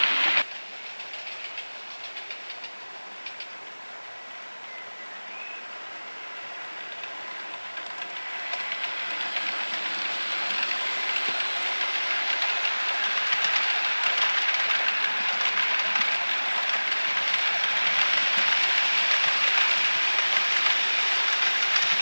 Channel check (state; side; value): inverted; both; correlation -1.00